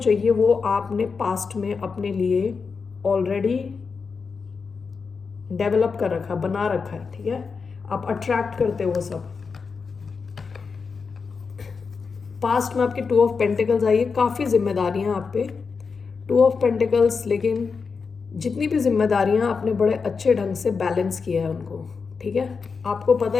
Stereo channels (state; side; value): quieter; right; 5.2 dB